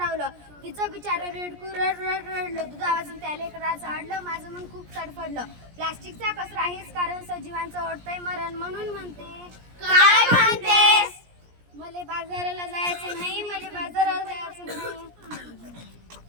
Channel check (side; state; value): left; late; 17 ms